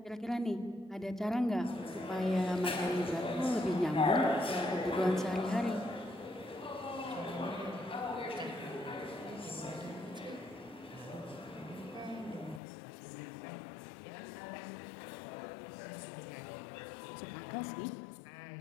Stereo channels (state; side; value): drops out; right; at 12.6 s